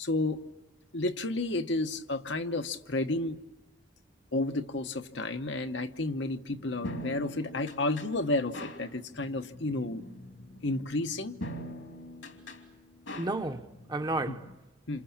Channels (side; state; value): both; normal; correlation 0.28